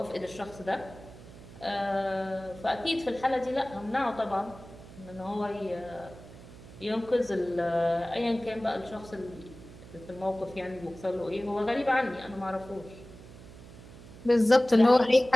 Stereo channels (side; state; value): right; noise; hum, 17 dB below the sound